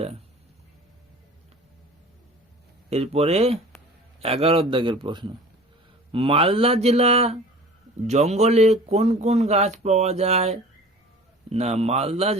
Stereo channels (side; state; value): both; normal; correlation 0.43